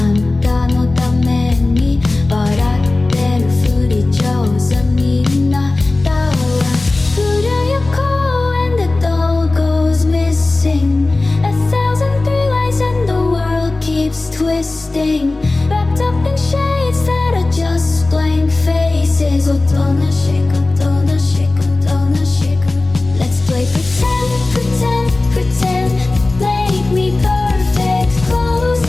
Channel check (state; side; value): quieter; right; 3.1 dB